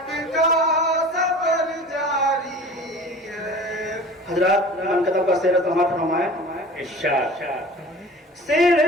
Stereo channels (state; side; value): normal; both; correlation 0.41